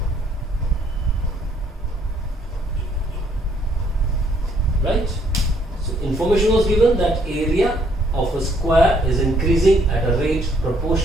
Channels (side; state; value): both; normal; correlation 0.67